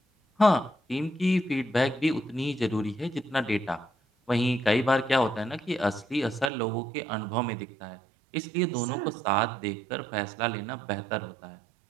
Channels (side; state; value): left; drops out; at 6.5 s